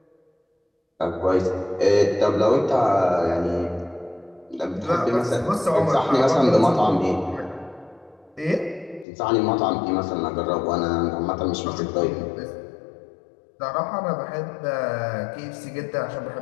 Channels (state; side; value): drops out; right; at 9.1 s